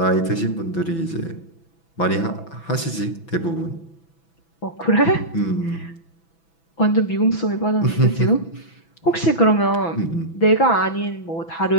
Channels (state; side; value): late; right; 6.0 ms